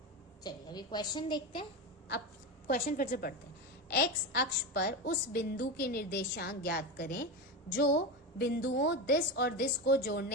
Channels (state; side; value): normal; both; correlation 0.18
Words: चलिए अभी क्वेश्चन देखते हैं. अब क्वेश्चन फिर से पढ़ते हैं. एक्स अक्ष पर उस बिंदु के निर्देशांक ज्ञात करें जो बिंदुओं दिस और दिस को